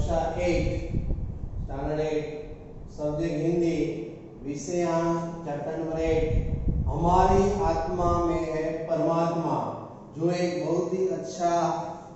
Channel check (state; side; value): identical; both; correlation 1.00